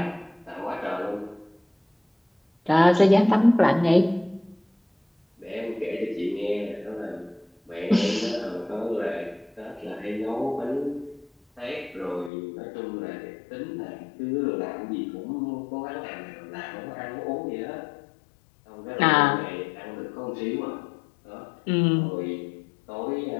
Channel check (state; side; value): drops out; right; at 12.3 s